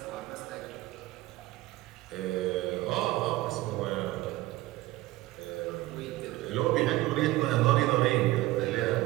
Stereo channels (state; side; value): quieter; left; 18.0 dB